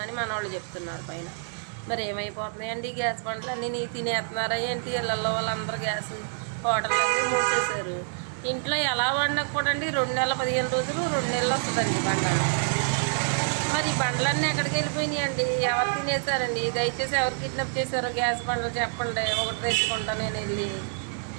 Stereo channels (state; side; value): silent; left; 60 dB below the other